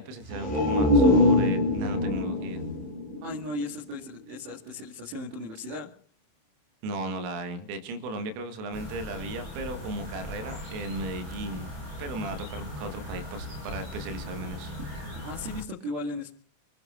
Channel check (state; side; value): late; left; 27 ms